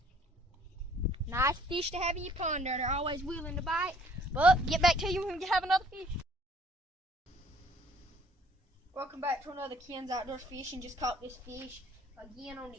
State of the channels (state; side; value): normal; both; correlation 0.58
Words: Nice fish to have in your pond there. They're always willing to bite. But get back to you when we have another fish. Welcome back to another Ken's Outdoors Fishing. Just caught this fish again on